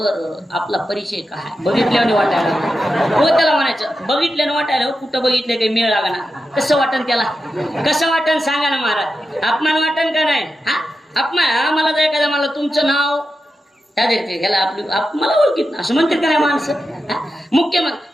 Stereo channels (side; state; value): both; normal; correlation 0.90